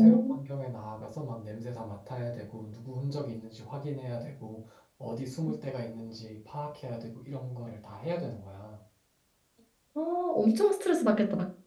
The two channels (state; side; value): identical; both; correlation 1.00